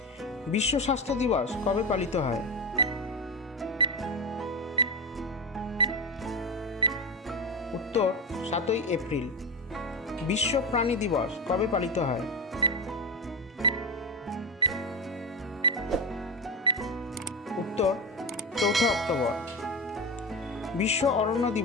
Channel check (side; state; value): both; normal; correlation 0.18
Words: বিশ্ব স্বাস্থ্য দিবস কবে পালিত হয়? উত্তর 7ই এপ্রিল। বিশ্ব প্রাণী দিবস কবে পালিত হয়? উত্তর 4 অক্টোবর। বিশ্ব অরণ্য